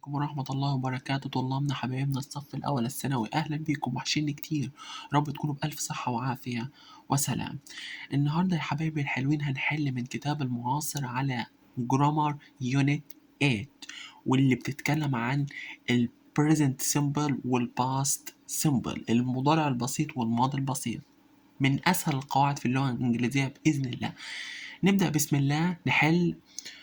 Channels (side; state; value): both; identical; correlation 1.00